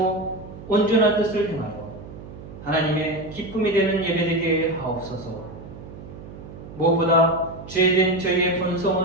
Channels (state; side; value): noise; right; hum, 15 dB below the sound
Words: 온전한 뜻을 행하여 하나님의 기쁨이 되는 예배 되게 하옵소서. 무엇보다 죄된 저희의